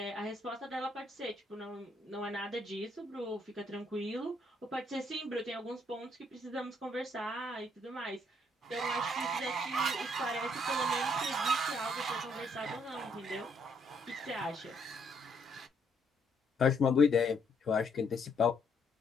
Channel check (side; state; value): both; normal; correlation 0.70